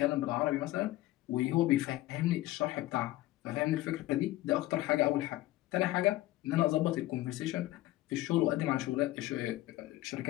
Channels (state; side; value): quieter; right; 16.6 dB